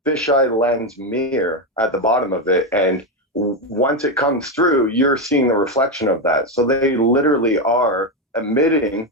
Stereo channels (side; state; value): both; normal; correlation 0.09